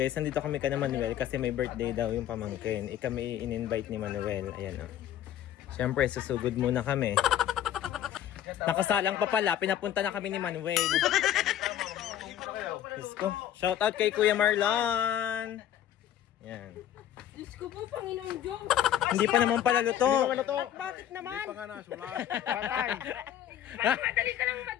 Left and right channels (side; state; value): right; quieter; 10.9 dB